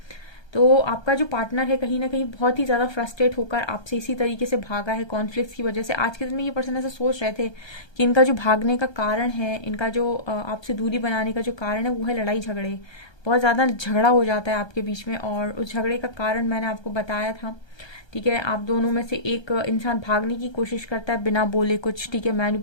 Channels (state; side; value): late; right; 1.3 ms